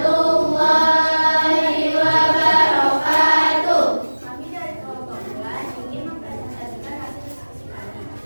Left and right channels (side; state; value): both; inverted; correlation -1.00